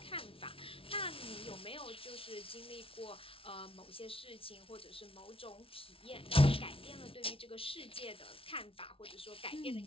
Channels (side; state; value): right; late; 0.26 ms